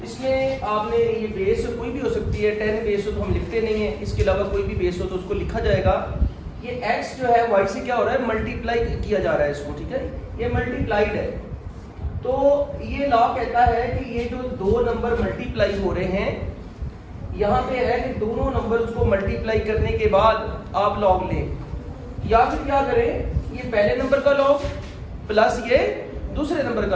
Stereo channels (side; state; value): both; identical; correlation 1.00